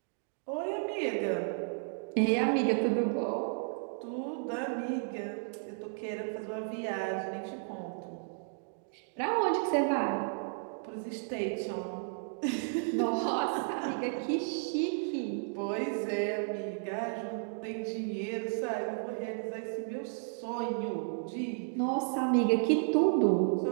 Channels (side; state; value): left; silent; digital silence